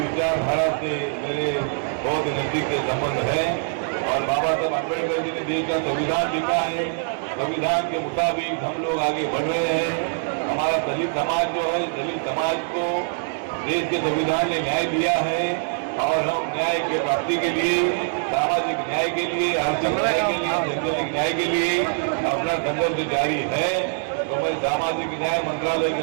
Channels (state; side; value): silent; left; digital silence